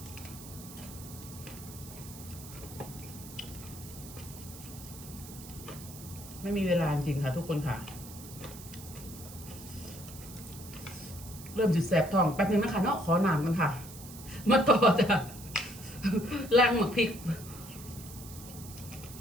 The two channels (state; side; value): noise; right; hiss, 15 dB below the sound